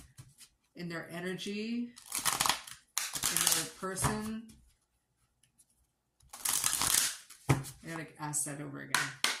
in their energy, in their person? I gotta ask that over again.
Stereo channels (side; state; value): both; identical; correlation 1.00